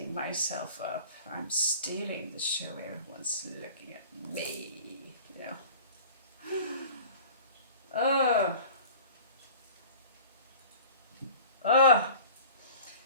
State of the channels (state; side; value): inverted; both; correlation -0.43